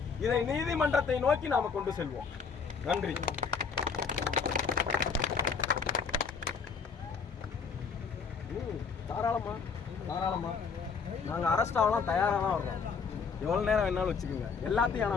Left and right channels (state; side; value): quieter; right; 5.6 dB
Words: இதை நீதிமன்றத்தை நோக்கி நாம கொண்டு செல்வோம். நன்றி. தாராளமா நாங்க அரெஸ்ட் ஆகலாம் தயாரா தான் வர்றோம். எவ்வளவு நேரம் வேணாலும் வச்சுக்கோங்க. எல்லாத்தையும் ஆனா